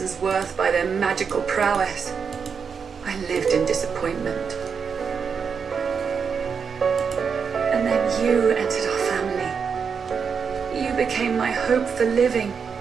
worth by their magical prowess. I lived in disappointment. And then you entered our family. You became my hope for living.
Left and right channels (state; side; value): quieter; left; 6.2 dB